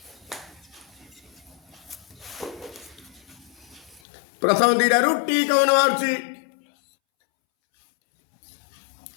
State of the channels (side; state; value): right; drops out; at 4.0 s